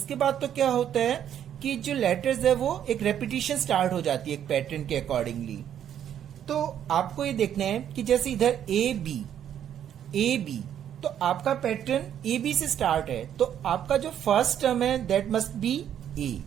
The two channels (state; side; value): quieter; left; 9.9 dB